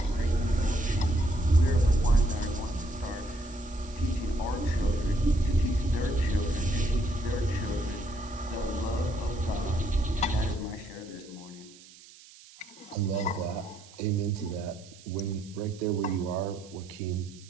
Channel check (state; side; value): noise; right; hiss, 22 dB below the sound